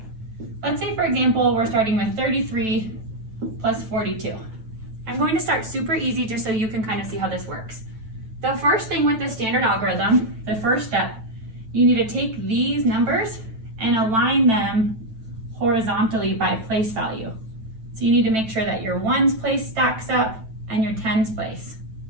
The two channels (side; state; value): left; late; 9.1 ms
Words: let's say for example, we're starting with 33 plus 42. I'm going to start super easy just so you can kind of see how this works. The first thing with the standard algorithm, the first step, you need to take these numbers and align them horizontally by place value. So you need to make sure that your ones place stacks up and your tens place